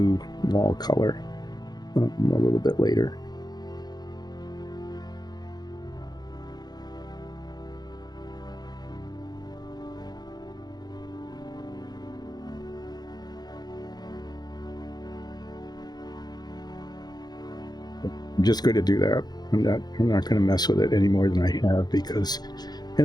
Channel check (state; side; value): late; right; 0.20 ms